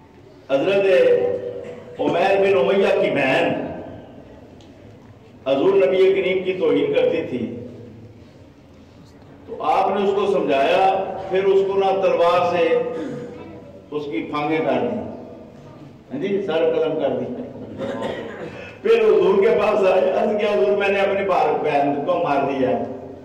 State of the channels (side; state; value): both; identical; correlation 1.00